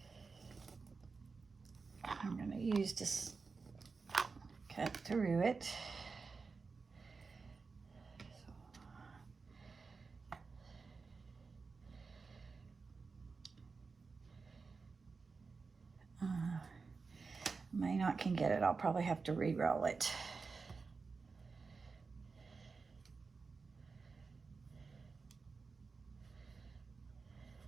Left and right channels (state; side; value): quieter; left; 4.6 dB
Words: I'm gonna use this, cut through it. May not can get it. I'll probably have to re-roll it.